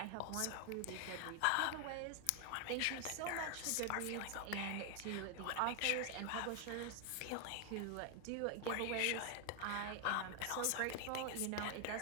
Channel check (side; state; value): both; different; correlation 0.00